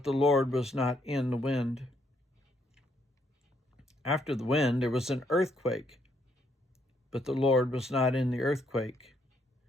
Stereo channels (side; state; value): both; normal; correlation 0.72